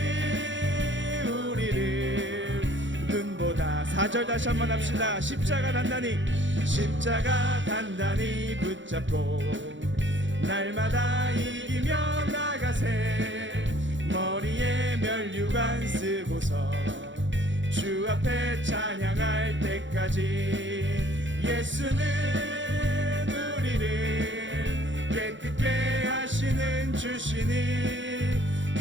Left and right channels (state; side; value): late; left; 0.55 ms